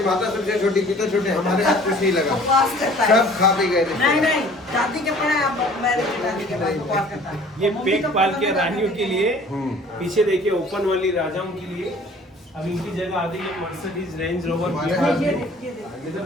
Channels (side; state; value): both; normal; correlation 0.51